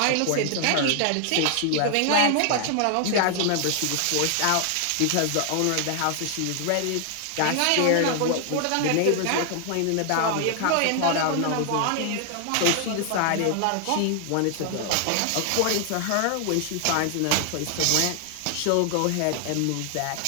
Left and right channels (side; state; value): both; different; correlation 0.00